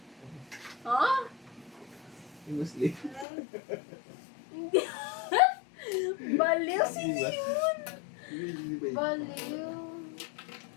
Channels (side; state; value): right; drops out; at 3.2 s